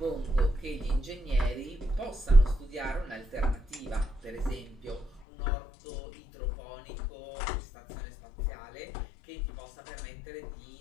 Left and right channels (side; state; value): right; drops out; at 5.2 s